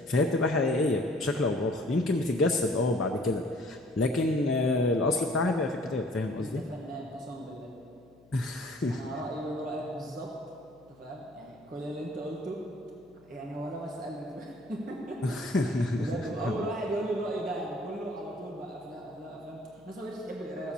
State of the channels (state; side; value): noise; left; hum, 27 dB below the sound